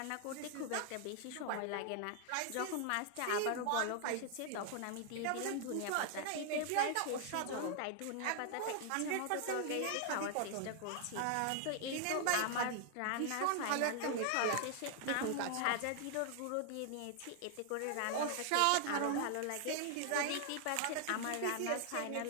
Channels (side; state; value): both; different; correlation 0.00